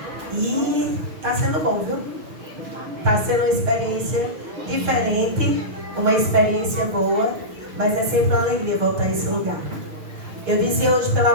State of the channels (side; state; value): left; late; 6.6 ms